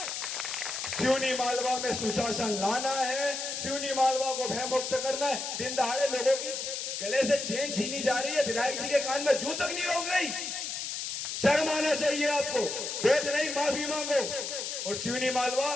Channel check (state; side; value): noise; left; hiss, 4 dB below the sound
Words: सिवनी मालवा में सुशासन लाना है, सिवनी मालवा को भयमुक्त करना है। दिन दहाड़े लोगों की गले से चेन छीनी जा रही है, विधायक जी के कान में जू तक नहीं रोक रही। शर्म आना चाहिए आपको, वेद नहीं माफी मांगो। और सिवनी मालवा